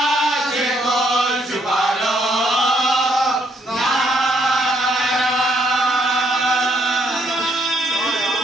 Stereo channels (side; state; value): both; normal; correlation 0.71